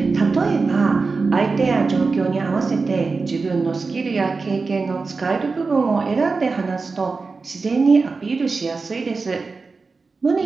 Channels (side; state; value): left; quieter; 4.2 dB